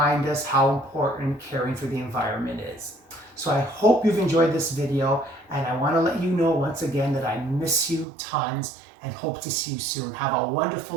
us how important caring for the environment is. So I hope you've enjoyed this video, and I want to let you know once again that I miss you tons and hope to see you soon. Have a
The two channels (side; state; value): left; drops out; at 8.1 s